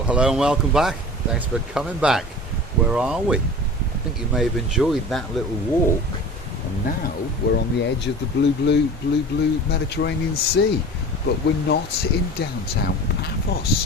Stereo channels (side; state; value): both; normal; correlation 0.38